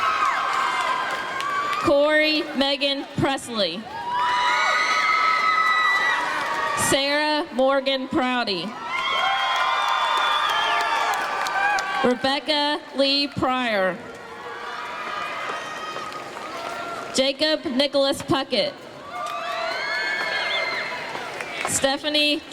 Corey Megan Presley. Sarah Morgan Prouty. Rebecca Lee Pryor. Jacob Nicholas Puckett. Stephanie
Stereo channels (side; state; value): both; identical; correlation 1.00